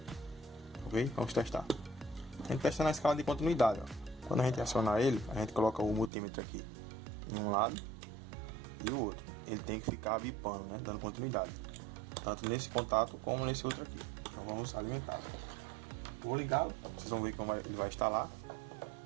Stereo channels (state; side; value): drops out; left; at 6.1 s